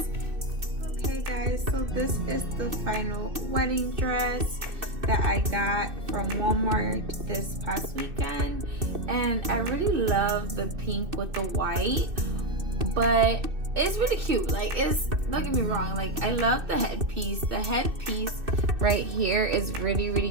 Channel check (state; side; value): late; left; 2.6 ms